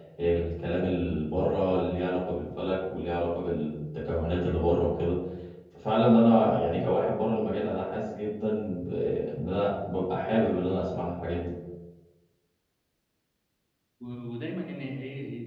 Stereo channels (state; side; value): identical; both; correlation 1.00